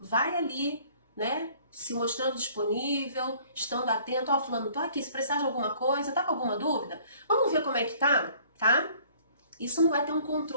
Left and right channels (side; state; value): both; inverted; correlation -0.55